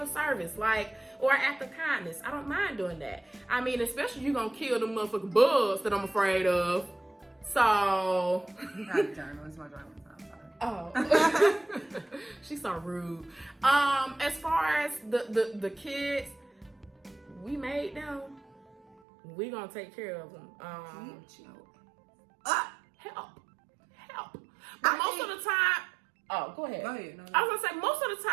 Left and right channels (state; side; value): drops out; left; at 18.9 s